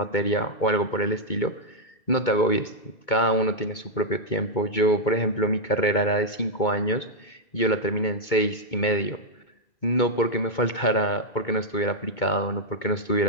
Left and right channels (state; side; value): late; right; 2.2 ms